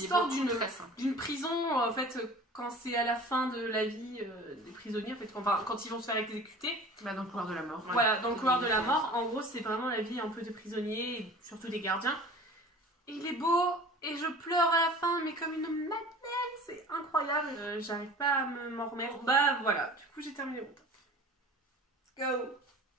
d'une prison, en fait, quand c'est à la fin de la vie des prisonniers, en fait, quand ils vont se faire exécuter. Bah, dans le couloir de la mort. Voilà, dans le couloir de la mort. En gros, c'est vraiment la vie un peu des prisonniers, et surtout des gardiens. Et il est beau, et je pleure à la fin, mais comme une madeleine, c'est incroyable. J'arrive pas à m'en remettre. Bah voilà, du coup j'ai terminé mon top. Let's go.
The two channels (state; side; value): normal; both; correlation 0.42